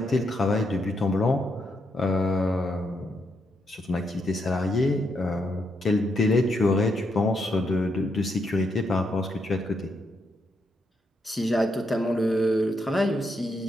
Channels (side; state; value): both; normal; correlation 0.80